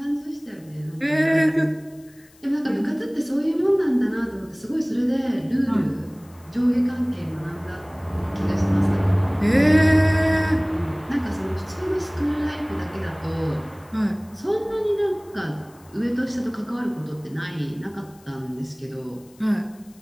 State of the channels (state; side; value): noise; left; hiss, 28 dB below the sound